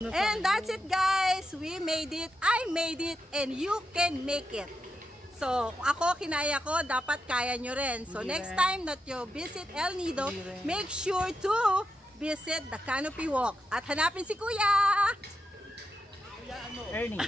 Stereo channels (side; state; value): both; normal; correlation 0.86